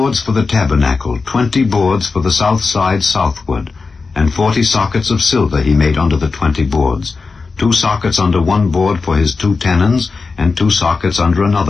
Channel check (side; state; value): right; quieter; 4.4 dB